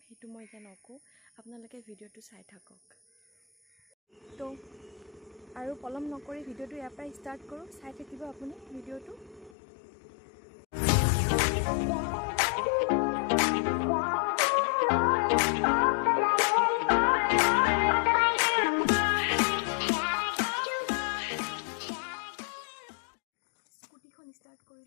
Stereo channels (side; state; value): right; drops out; at 9.6 s